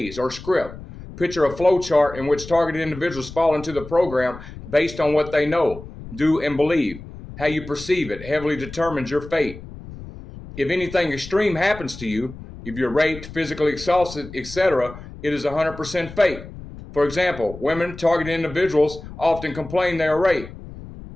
or script. Picture a flow chart in which targeted individuals fall into the program based on what they know, do, and believe. How you perceive it heavily determines your fate. If anything extreme happens to you, if you're raped, physically assaulted, etc., it is 100% fate. For example, women, targeted individuals often complain they are raped,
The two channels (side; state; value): left; noise; rumble, 14 dB below the sound